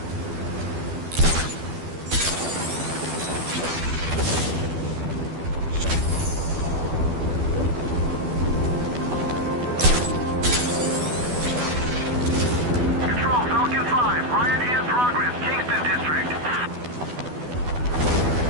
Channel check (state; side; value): late; left; 12 ms